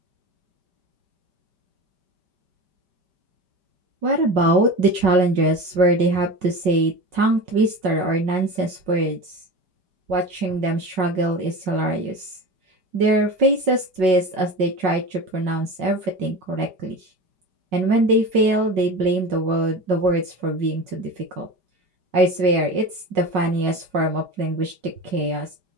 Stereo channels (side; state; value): left; late; 5.4 ms